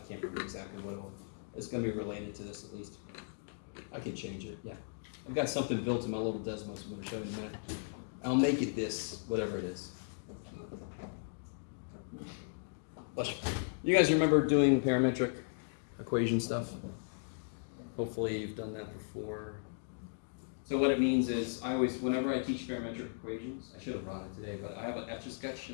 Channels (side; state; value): right; silent; digital silence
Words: can't remember exactly what it was. It's going to be related to this at least. I can change it, yeah. I've got something built in my little Desmos I'm going to show you in a minute. I'll make it this, whatever it is. Bless you. You guys remember doing parametric equation stuff? Hopefully you've done that before. So what it means is, whenever I teach parametric equations, I should have brought it today, but I have an Etch-a-Sketch